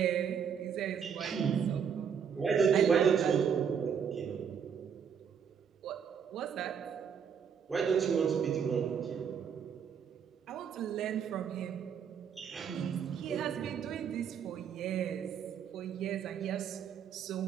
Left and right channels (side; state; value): left; quieter; 7.4 dB